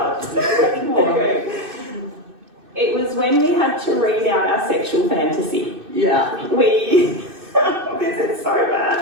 It was when we had to read out our sexual fantasy. Yeah. This is so bad.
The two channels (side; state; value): left; late; 2.6 ms